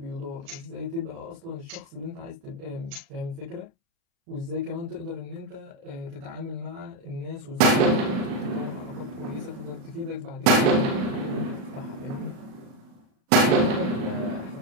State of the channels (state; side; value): late; left; 36 ms